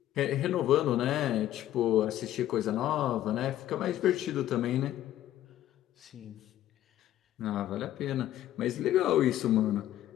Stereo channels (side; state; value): right; quieter; 12.9 dB